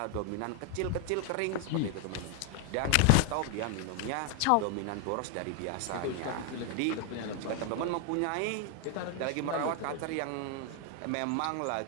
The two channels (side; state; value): both; different; correlation 0.00